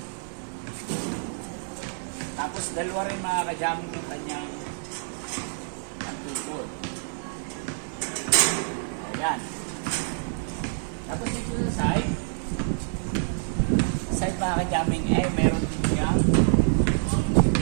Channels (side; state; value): left; silent; digital silence